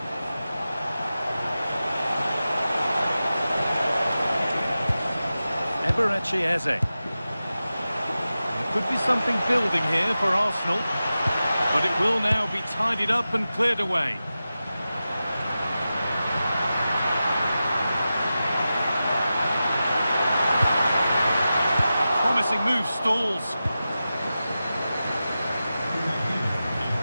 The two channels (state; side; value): inverted; both; correlation -0.93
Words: Eberechi Eze. There could be something building here for Arsenal, but it will now be tidied up and cleared away. Promising move stalls.